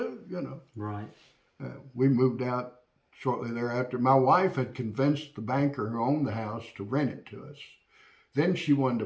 Right. We moved out shortly thereafter. My wife had convinced the banker who owned the house to rent it to us. Then she wanted to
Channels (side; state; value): both; identical; correlation 1.00